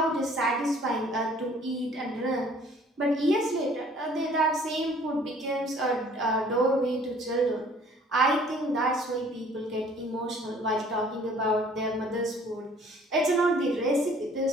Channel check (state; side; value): normal; both; correlation 0.55